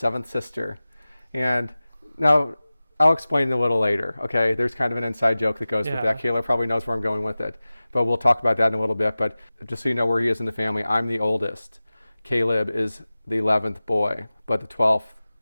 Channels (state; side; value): inverted; both; correlation -0.97